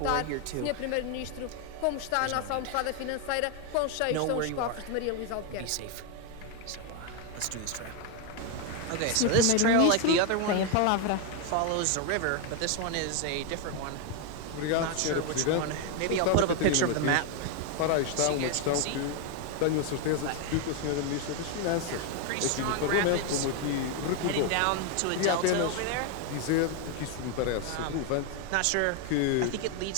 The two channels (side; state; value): both; different; correlation 0.01